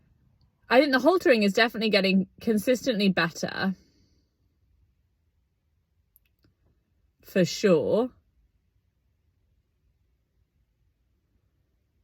I think the haltering is definitely getting consistently better. For sure.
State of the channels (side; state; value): both; identical; correlation 1.00